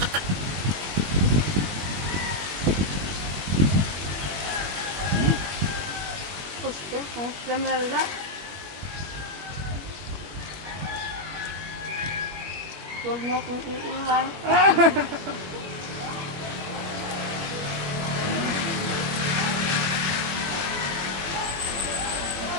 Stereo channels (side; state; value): left; late; 21 ms